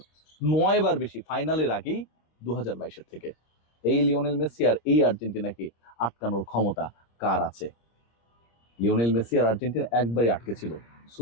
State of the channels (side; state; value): right; late; 26 ms